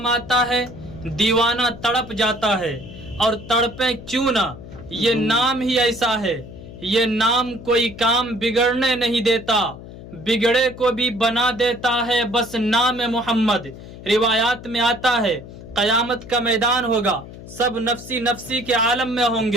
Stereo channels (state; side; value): noise; left; hum, 15 dB below the sound